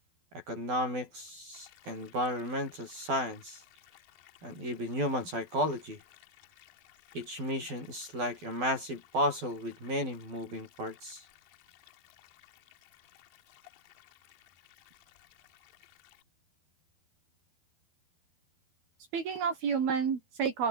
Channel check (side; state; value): left; late; 12 ms